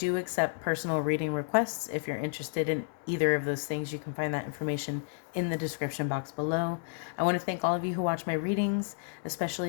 accept personal reading requests. If you're interested in either of those things, you can find that information in the description box below. I want to thank all of you who watch my readings,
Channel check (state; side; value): silent; right; 57 dB below the other